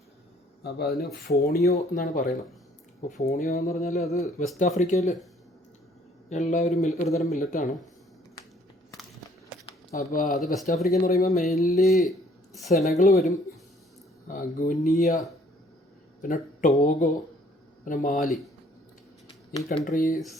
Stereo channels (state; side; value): normal; both; correlation 0.60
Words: അപ്പോൾ അതിന് ഫോണിയോ എന്നാണ് പറയുന്നത്. അപ്പോൾ ഫോണിയോ എന്ന് പറഞ്ഞാൽ അത് വെസ്റ്റ് ആഫ്രിക്കയിൽ ഉള്ള ഒരു തരം മില്ലറ്റാണ്. അപ്പോൾ അത് വെസ്റ്റ് ആഫ്രിക്ക എന്ന് പറയുമ്പോൾ മെയിൻലി സെനഗൾ വരും, ഗുനിയ, പിന്നെ ടോഗോ, പിന്നെ മാലി, ഈ